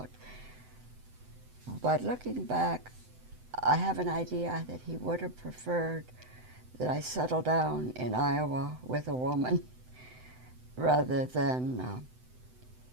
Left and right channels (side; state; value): left; late; 7.9 ms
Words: But looking back, I have an idea that he would have preferred that I settle down in Iowa with a woman rather than